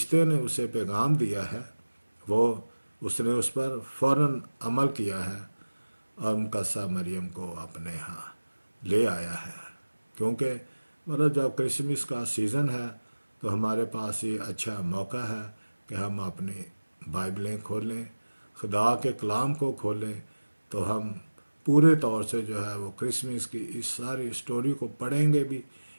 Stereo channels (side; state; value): both; inverted; correlation -1.00